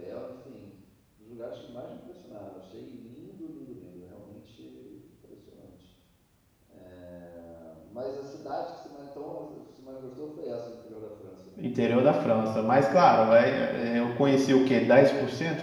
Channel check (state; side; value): identical; both; correlation 1.00